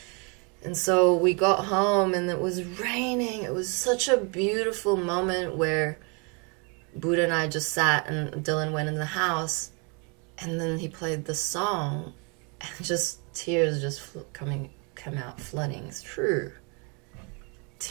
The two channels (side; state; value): left; quieter; 33.5 dB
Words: And so we got home and it was raining. It was such a beautiful moment where Buddha and I just sat and Dylan went in the house and then he played the song and just tears just come out flooding through.